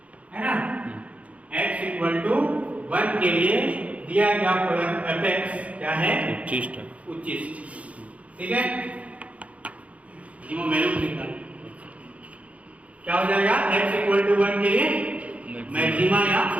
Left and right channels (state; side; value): late; left; 0.066 ms